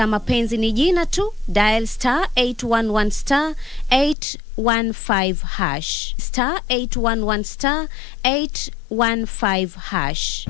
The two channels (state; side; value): drops out; right; at 4.2 s